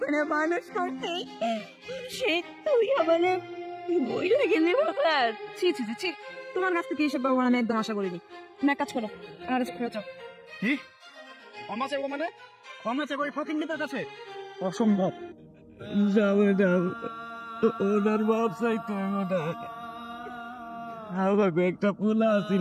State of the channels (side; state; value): both; identical; correlation 1.00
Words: করে মানুষ করছি, সে তুই আমারে বইলে গেলি বাবা। ছি ছি ছি, তোমার কাছ থেকে এসব বাবা আমি একদম আশা করিনি। তুমি এক কাজ করো, আর ফেরত যাও। কি ক্ষমা চাইবো মানে? ক্ষমা চাইবো ওই ফকিন্নিদের কাছে? অসম্ভব। যাবে না, ওনার বাপ চাইতো ওটা। আমাকে একটা পোলা